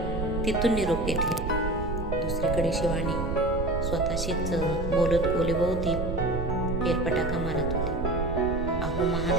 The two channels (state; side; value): noise; right; rumble, 3 dB below the sound